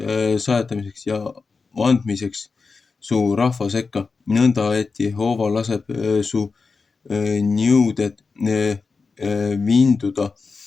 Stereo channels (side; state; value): right; quieter; 4.6 dB